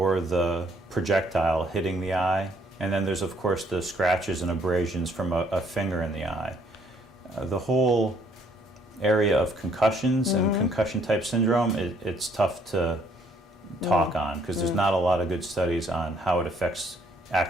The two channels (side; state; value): both; normal; correlation 0.66